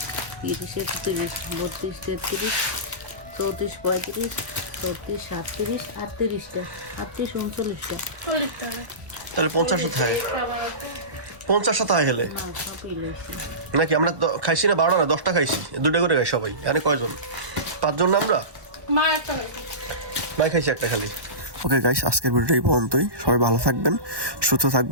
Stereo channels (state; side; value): late; left; 1.1 ms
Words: 30, 31, 32, 33, 34, 35, 36, 37, 38টা, 38, 39টা। 40টা। তাহলে 50টা থাকে। 50টা থাকে হেলে না সবই লইছি। নাকি? আমরা খাইছি না 12টা না 10টা খাইছি, 2টা করে খাই সবাই। এখানে কয়জন? 5 জন না আমরা? মা একটা খাইছে। মাই খাইছি একটা খালি। ওকে গাইস, আজকের ভিডিওটা এই পর্যন্তই। সবাই ভালো থাকবেন, সুস্থ